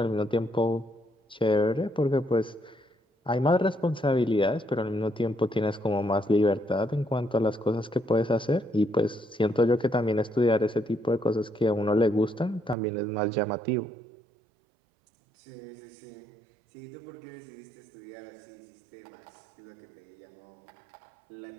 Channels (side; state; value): left; drops out; at 12.8 s